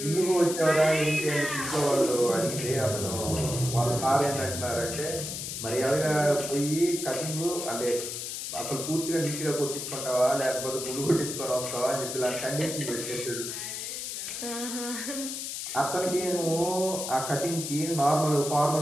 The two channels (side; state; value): left; noise; hiss, 5 dB below the sound